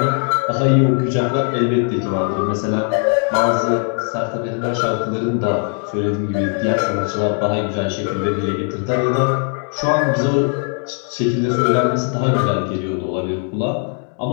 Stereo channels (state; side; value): quieter; right; 39.9 dB